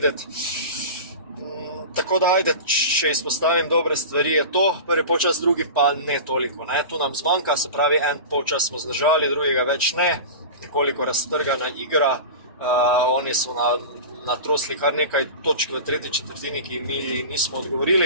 Tako da, ajde, če izpostavim dobre stvari, je to prvi polčas, drugi pa ne toliko. Ne? Tu nam zmanjka, se pravi, en polčas smo zdržali, drugega več ne, nekoliko raztrgana igra. Oni so natrosli kar nekaj točk v tretji četrtini, ki mi nismo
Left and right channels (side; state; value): both; inverted; correlation -0.31